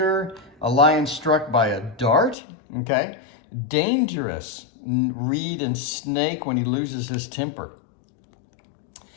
A lion struck by a dart. Okay. Dangerous. Reed and snake when he loses his temper.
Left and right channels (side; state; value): right; drops out; at 2.4 s